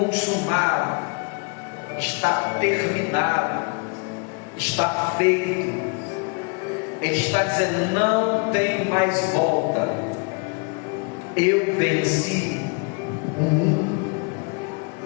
está terminado, está feito. Ele está dizendo: não tem mais volta. Eu venci o mundo.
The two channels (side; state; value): right; quieter; 33.6 dB